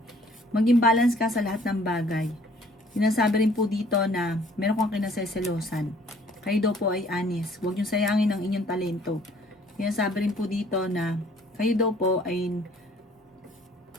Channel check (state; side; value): normal; both; correlation 0.58